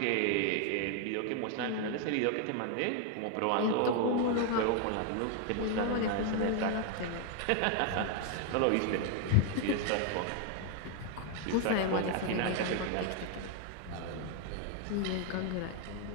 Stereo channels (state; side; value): different; both; correlation 0.00